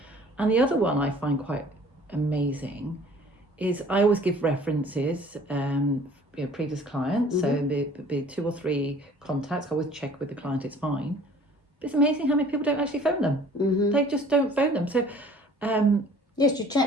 And the other one I find quite amazing is I always give references, previous clients. So be 2 or 3 contacts. I always check with the client; it's fine. But it's amazing how many people don't actually phone them. They just don't phone them. So. Yes, you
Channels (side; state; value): both; normal; correlation 0.51